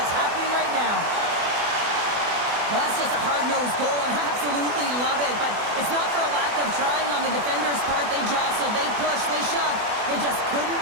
happening right now. Well, that's just a hard-nosed goal, and I absolutely love it, but it's not for a lack of trying on the defender's part. They jostled, they pushed, they shoved. They just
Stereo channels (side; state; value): left; late; 24 ms